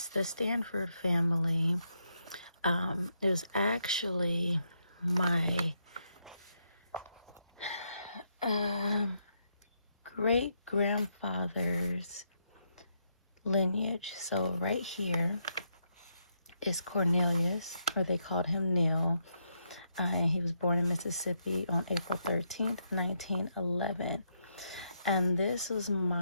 the Stanford family. It was actually my great-grandfather's lineage. So right here is Cornelius, or they called him Neil. He was born in Mississippi on April 13th, 1911. And this was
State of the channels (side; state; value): both; inverted; correlation -0.79